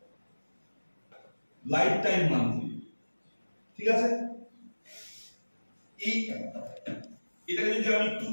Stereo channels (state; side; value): inverted; both; correlation -1.00